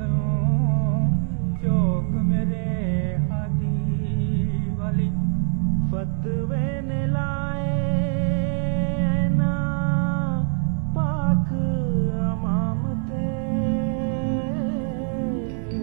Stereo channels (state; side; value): silent; left; 63 dB below the other